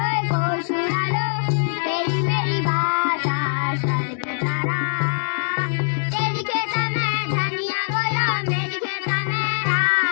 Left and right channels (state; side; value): silent; right; digital silence